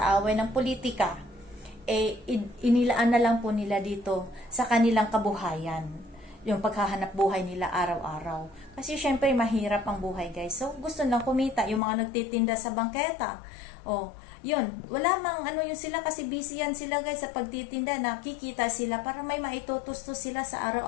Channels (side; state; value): right; drops out; at 11.8 s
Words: away ng politika, inilaan na lang po nila dito sa kanilang kabuhayan. Yung paghahanap buhay nila araw-araw. Kasi syempre mahirap ang buhay guys. So gusto lang kumita. Yung mga nagtitinda sa bangketa. O, yun. Wala mang ano yun sila kasi busy yan sila guys sa pagtitinda. Nakikita sila para may maitutustos sila sa